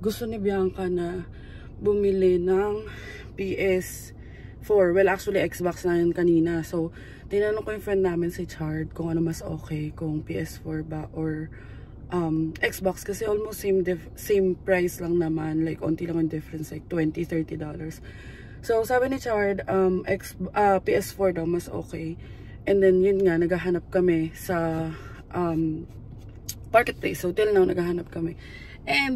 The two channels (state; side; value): identical; both; correlation 1.00